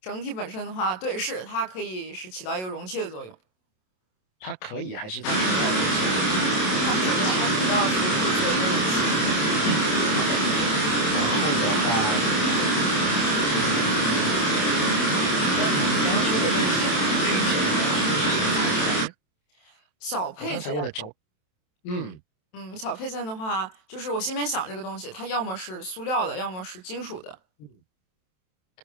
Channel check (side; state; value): right; late; 27 ms